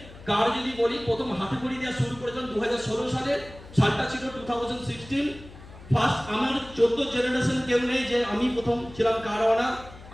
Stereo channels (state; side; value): noise; left; hum, 18 dB below the sound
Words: কার যদি বলি, প্রথম হাতে খড়ি দেওয়া শুরু করেছিলাম 2016 সালে, সালটা ছিল 2016। ফার্স্ট আমার 14 জেনারেশন কেউ নেই যে আমি প্রথম ছিলাম কার ওনার।